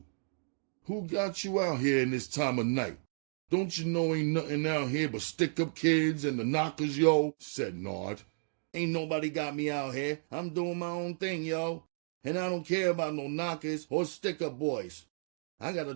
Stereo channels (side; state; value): left; silent; digital silence